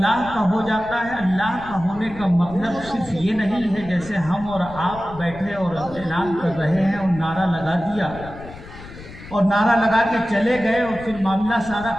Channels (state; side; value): noise; left; rumble, 16 dB below the sound